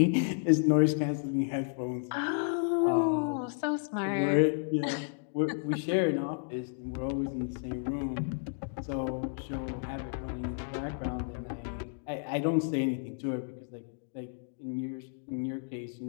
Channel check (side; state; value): right; silent; digital silence